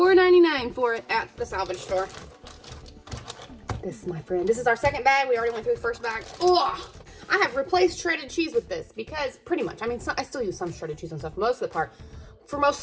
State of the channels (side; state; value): both; identical; correlation 1.00